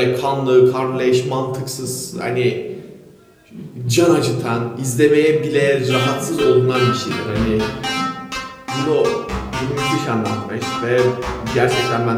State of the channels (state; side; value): identical; both; correlation 1.00